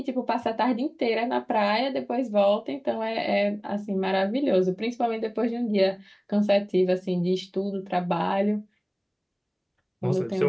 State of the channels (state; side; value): identical; both; correlation 1.00